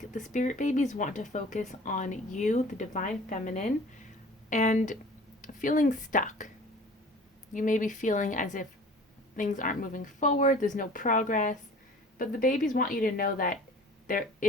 the Spirit Babies want to focus on you, the Divine Feminine, and feeling stuck. You may be feeling as if things aren't moving forward, there's no progress, but the babies want you to know that there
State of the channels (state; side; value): normal; both; correlation 0.45